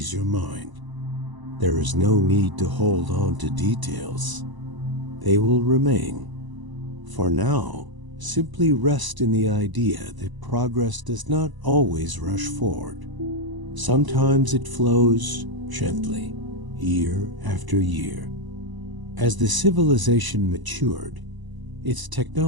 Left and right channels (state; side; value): late; left; 1.0 ms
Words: your mind. There is no need to hold on to details. They will remain. For now, simply rest in the idea that progress does not always rush forward. Sometimes it flows gently, year after year. As the civilization matured, its